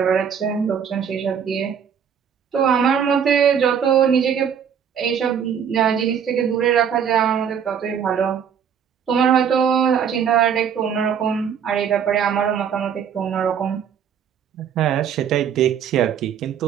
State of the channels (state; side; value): quieter; left; 7.9 dB